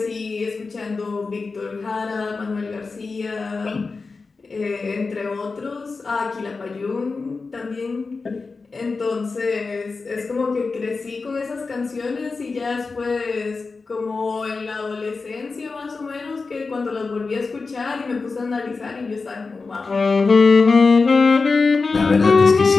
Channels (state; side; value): quieter; right; 4.2 dB